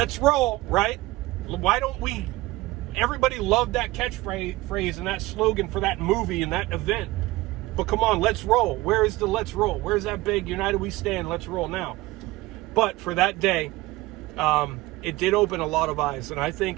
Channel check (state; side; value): quieter; left; 19.5 dB